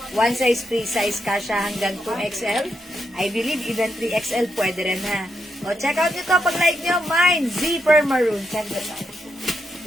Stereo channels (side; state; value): both; normal; correlation 0.82